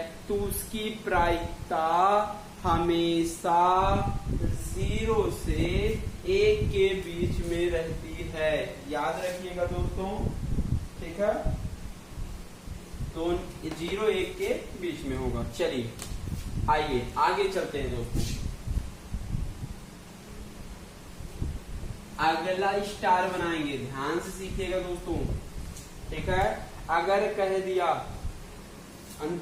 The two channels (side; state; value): both; identical; correlation 1.00